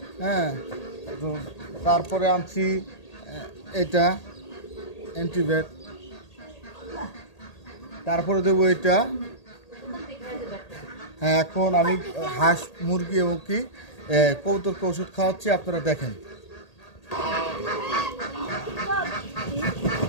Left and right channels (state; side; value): late; right; 1.8 ms